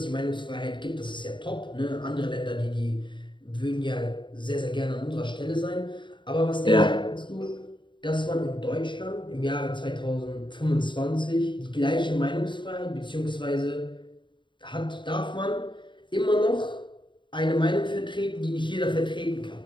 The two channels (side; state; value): right; late; 0.23 ms